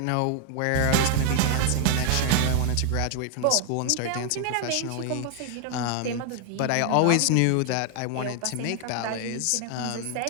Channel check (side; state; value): both; different; correlation 0.00